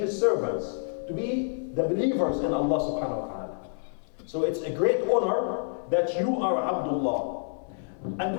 servants, to be the believers in Allah subhanahu wa ta'ala. So it's a great honor that you are Abdullah. And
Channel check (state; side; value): silent; right; 59 dB below the other